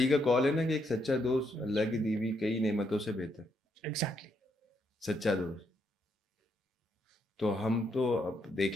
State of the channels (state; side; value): normal; both; correlation 0.76